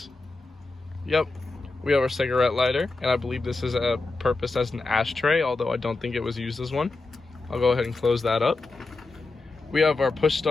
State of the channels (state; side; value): quieter; right; 3.5 dB